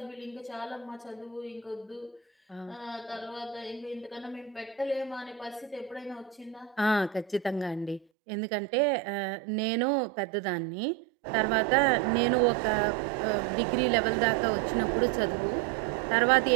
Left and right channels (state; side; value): drops out; left; at 8.1 s